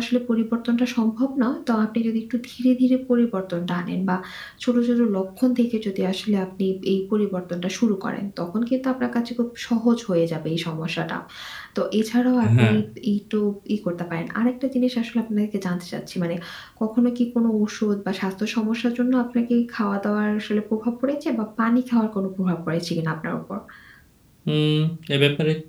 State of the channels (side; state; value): both; identical; correlation 1.00